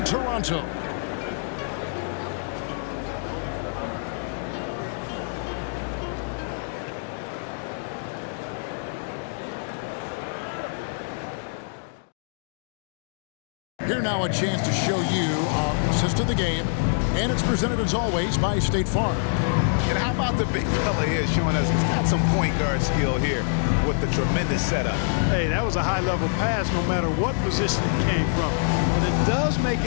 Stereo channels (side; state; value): right; silent; digital silence